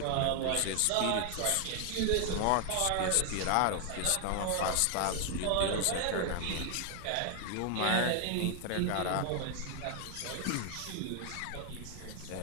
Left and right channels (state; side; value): different; both; correlation 0.00